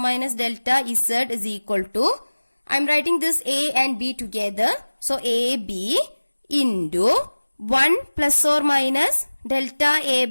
delta Z is equal to, I am writing this A and B together. So AB into 1 plus or minus delta A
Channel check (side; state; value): both; inverted; correlation -1.00